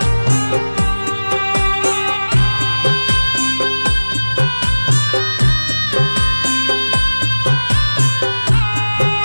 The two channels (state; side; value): inverted; both; correlation -1.00